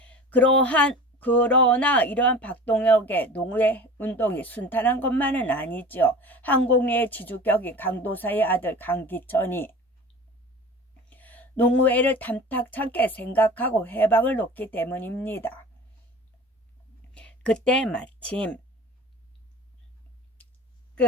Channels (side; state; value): both; normal; correlation 0.38